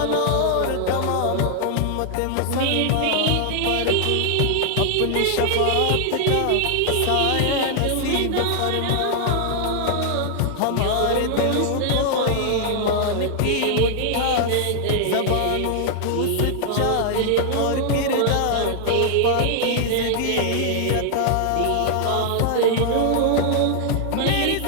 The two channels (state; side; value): different; both; correlation 0.00